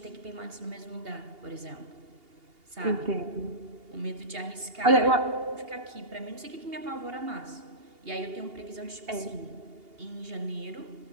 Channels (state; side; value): late; left; 2.8 ms